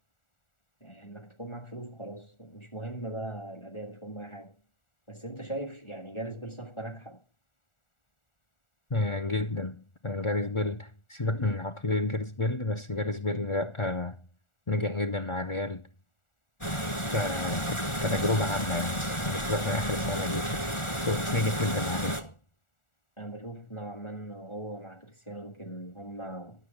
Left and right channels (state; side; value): late; right; 1.4 ms